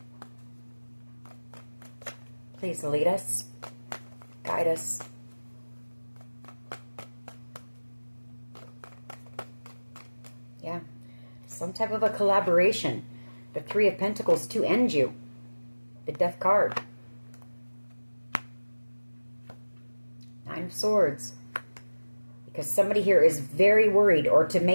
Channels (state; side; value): inverted; both; correlation -1.00